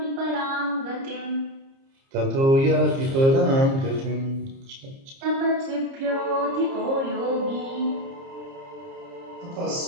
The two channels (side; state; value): left; late; 30 ms